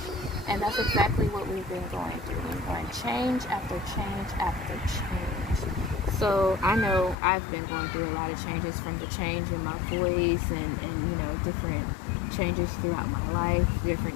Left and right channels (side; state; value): right; drops out; at 7.2 s